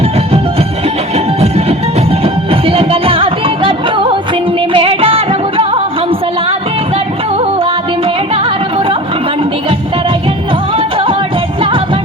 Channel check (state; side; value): normal; both; correlation 0.39